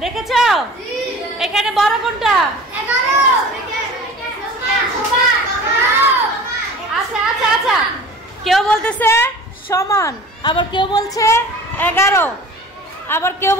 দেখেছো এখানে বড় কোনটা? আচ্ছা আচ্ছা আচ্ছা, কেউ বলতেছে সমান, আবার কেউ বলছে 11, আবার কেউ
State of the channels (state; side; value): normal; both; correlation 0.41